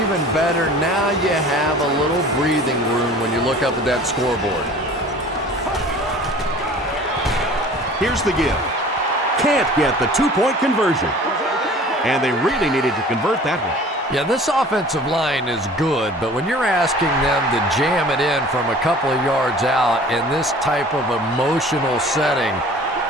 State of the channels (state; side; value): normal; both; correlation 0.46